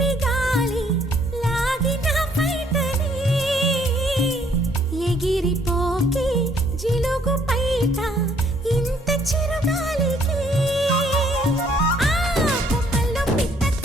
గాలి లాగిన పైటని ఎగిరిపోకే జిలుగు పైట ఇంత చిరుగాలికి కొమ్మల్లో పిట్ట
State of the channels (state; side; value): normal; both; correlation 0.65